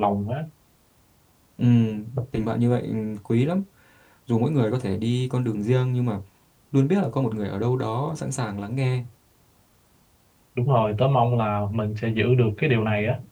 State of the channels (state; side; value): identical; both; correlation 1.00